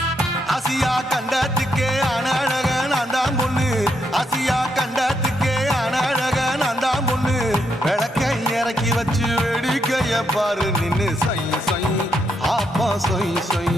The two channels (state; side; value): normal; both; correlation 0.79